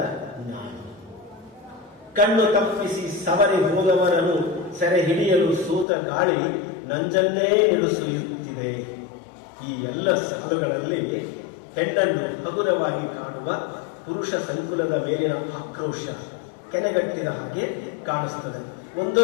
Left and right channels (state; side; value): drops out; right; at 5.9 s